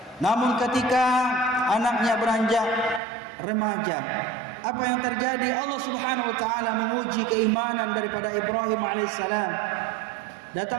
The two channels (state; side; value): drops out; left; at 3.0 s